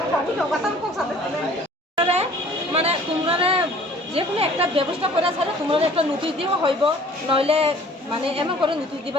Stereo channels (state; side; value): normal; both; correlation 0.52